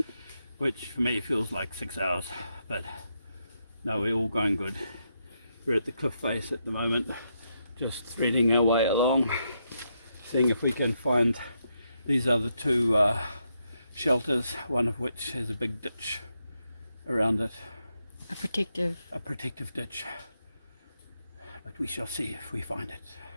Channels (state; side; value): inverted; both; correlation -0.81